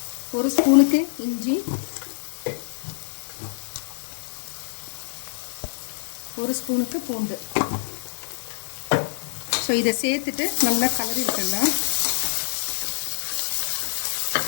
ஒரு ஸ்பூனுக்கு இஞ்சி, ஒரு ஸ்பூனுக்கு பூண்டு. ஸோ இதை சேர்த்துட்டு நல்லா கலரி விட்டுடலாம்.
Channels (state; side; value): silent; right; digital silence